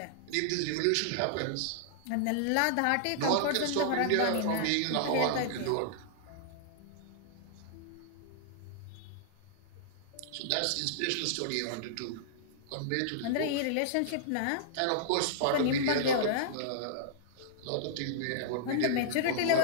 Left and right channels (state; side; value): different; both; correlation -0.01